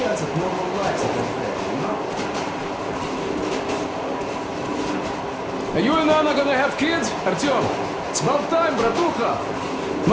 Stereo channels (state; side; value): identical; both; correlation 1.00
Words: at normal lives at that fair, you know? Are you and Anna gonna have kids, Artyom? It's about time, bratucha.